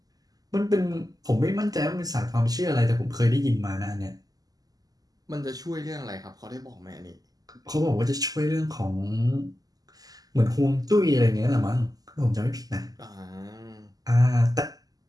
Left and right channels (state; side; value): late; left; 0.18 ms